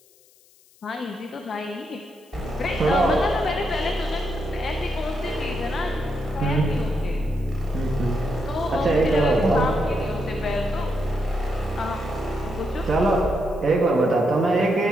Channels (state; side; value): noise; left; hiss, 30 dB below the sound